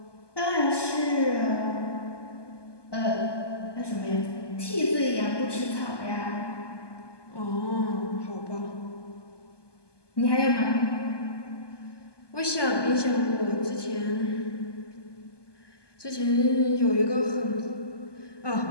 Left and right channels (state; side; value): late; right; 1.2 ms